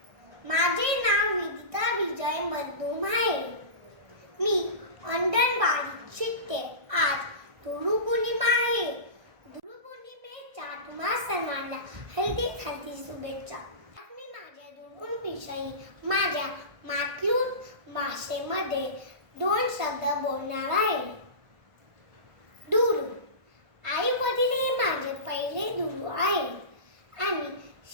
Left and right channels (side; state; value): left; late; 1.6 ms